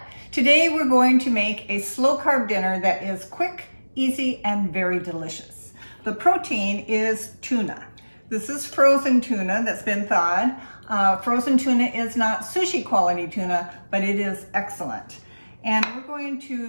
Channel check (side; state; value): both; inverted; correlation -1.00